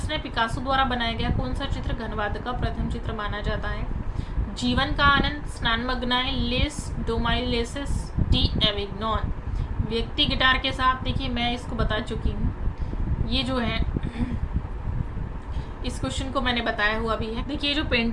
है, पिकासो द्वारा बनाया गया कौन सा चित्र घनवाद का प्रथम चित्र माना जाता है? जीवन का आनंद, स्नानमग्नाएं, लेस डोमाइलेसिस, डी एविग्नॉन? व्यक्ति गिटार के साथ, देखिए मैं इसको बता चुकी हूँ, ये जो है इस क्वेश्चन को मैंने बताया हुआ भी है। देखिए जो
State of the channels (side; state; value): both; identical; correlation 1.00